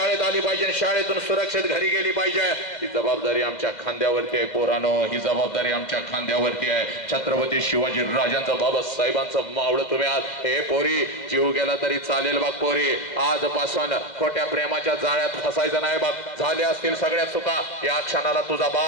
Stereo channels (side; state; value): right; late; 2.1 ms